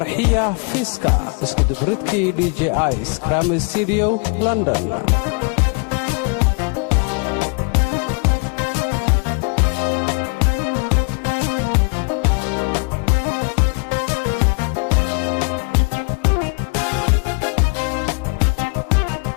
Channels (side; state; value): right; quieter; 33.0 dB